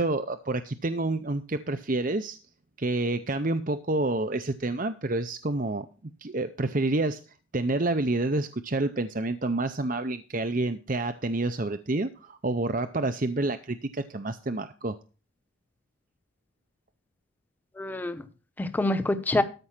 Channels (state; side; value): normal; both; correlation 0.48